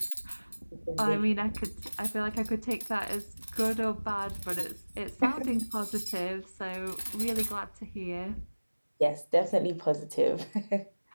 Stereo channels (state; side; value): inverted; both; correlation -1.00